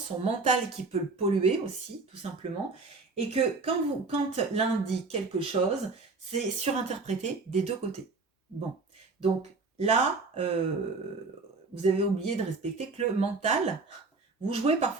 son mental qui peut le polluer aussi, tout simplement, et que quand l'un dit quelque chose, c'est surinterprété des deux côtés. Bon, donc là, vous avez oublié de respecter que le mental, vous jouez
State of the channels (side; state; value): left; quieter; 3.9 dB